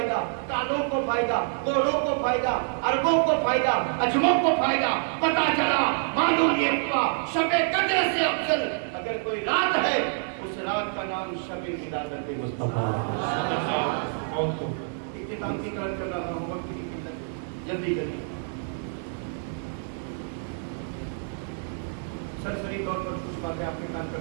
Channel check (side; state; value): left; silent; 60 dB below the other